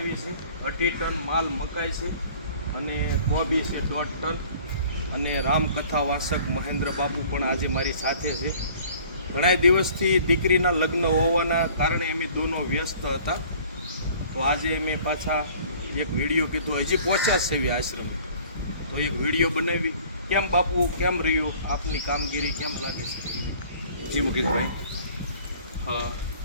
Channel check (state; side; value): inverted; both; correlation -0.51